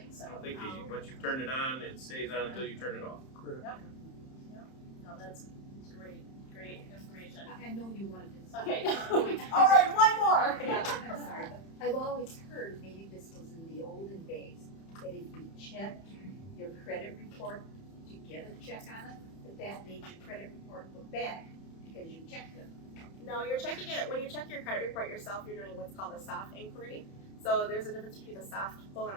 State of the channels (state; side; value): late; right; 31 ms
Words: so. I don't think once you've turned it on, it stays on until you turn it off. No, that's great information. I know you wanted to. Okay. All right, one more. I'm sorry, but I've always heard, maybe this was in the olden days, that if you checked your credit report to get a check on it, that made your credit report look bad because you checked it. No, you're checking it, when you check your credit report yourself, you're doing what's called a soft inquiry. So there's a difference between a soft pull and